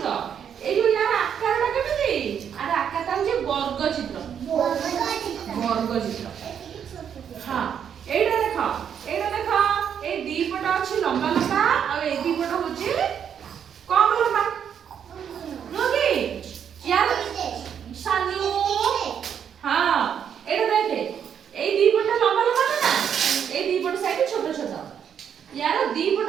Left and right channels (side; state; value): left; quieter; 8.3 dB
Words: ଏଇ ଯୋଉ ୟାର ଆକାରଟା କେମିତି? ଆର ଆକାରଟା ହଉଛି ବର୍ଗ ଚିତ୍ର। ହଁ ଏଇଟା ଦେଖ ଏଇ ଦି ପଟ ଅଛି ଲମ୍ବା ଲମ୍ବା ଆଉ ଏଇ ଦି ପଟ ହଉଛି କମ ଲମ୍ବା ନୁହଁ କି? ୟାର ସାନୁ ହଁ ଏଇଟା ଦେଖେ ଏଇ ଦି ପଟ ଲମ୍ବା ଲମ୍ବା ନା ଏଇ ଦି ପଟ ସାଇଡ ଛୋଟ ଛୋଟ। ୟାର ଦି ପଟ